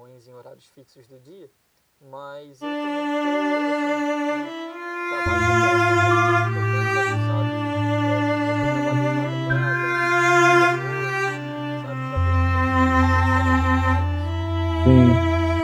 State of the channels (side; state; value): both; identical; correlation 1.00